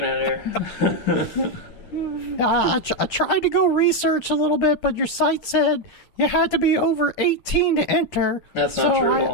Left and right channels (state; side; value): late; right; 10 ms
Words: at here? I tried to go research a little bit, but your site said you had to be over 18 to enter. That's not true at